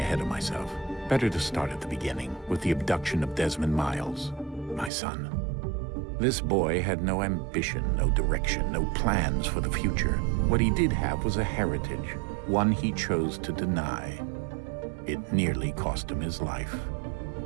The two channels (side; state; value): left; drops out; at 4.9 s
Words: of myself. Better to start at the beginning, with the abduction of Desmond Miles, my son. This boy had no ambition, no direction, no plans for the future. What he did have was a heritage, one he chose to deny. It nearly cost him his life.